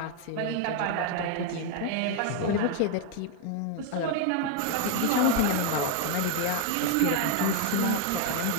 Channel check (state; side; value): different; both; correlation 0.00